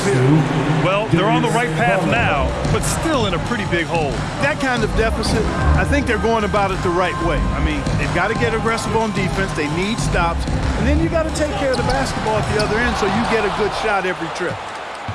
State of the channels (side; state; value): both; identical; correlation 1.00